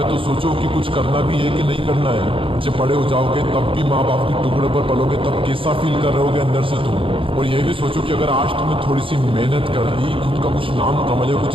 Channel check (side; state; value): left; late; 0.26 ms